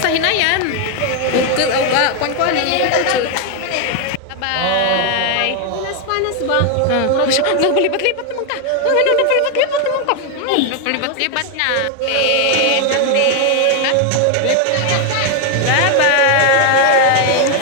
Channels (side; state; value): both; different; correlation 0.01